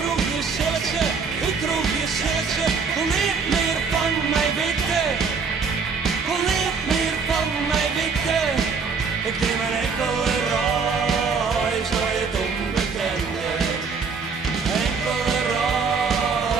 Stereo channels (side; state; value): left; quieter; 5.2 dB